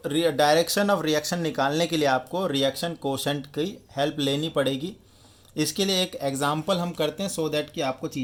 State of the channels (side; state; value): both; identical; correlation 1.00